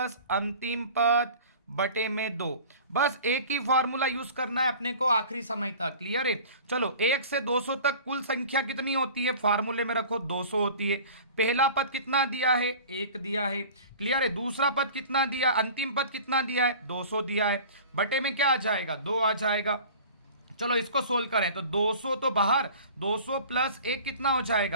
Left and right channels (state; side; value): inverted; both; correlation -0.42